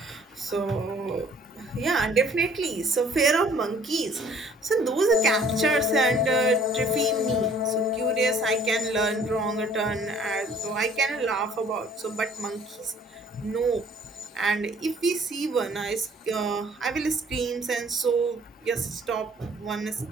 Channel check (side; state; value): both; normal; correlation 0.56